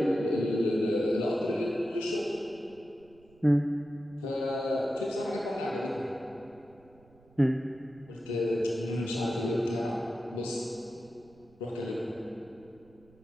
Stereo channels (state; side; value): noise; right; rumble, 28 dB below the sound